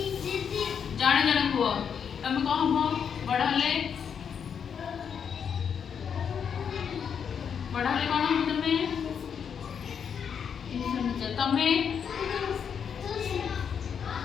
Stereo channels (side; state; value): right; quieter; 7.3 dB